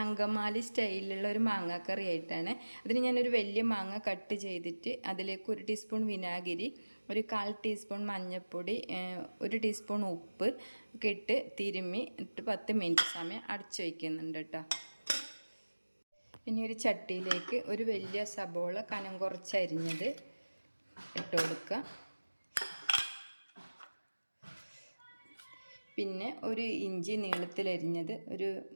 സ്റ്റൈലിലുള്ള ഒരു മാങ്ങാക്കറി ആയിട്ടാണ്. അതിന് ഞാനൊരു വലിയ മാങ്ങ കട്ട് ചെയ്തിട്ട് അതിലേക്ക് 1 ടീസ്പൂൺ വിനാഗിരി, ഒരു 1/4 ടീസ്പൂൺ മഞ്ഞൾപ്പൊടി, 1 ടീസ്പൂൺ ഉപ്പ് ഒക്കെ ഇട്ട് തിരുമ്മി 10 മിനിറ്റ് സമയം അടച്ചു വയ്ക്കുന്നുണ്ട് കേട്ടോ. പിന്നെ ഒരു ചട്ടിയിലേക്ക് ഒരു വലിയ സബോള കനം കുറച്ചരിഞ്ഞത് ഇട്ട് കൊടുക്കുക. പിന്നെ ഒരു ഇഞ്ചി നീളത്തിലരിഞ്ഞത്,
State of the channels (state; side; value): inverted; both; correlation -1.00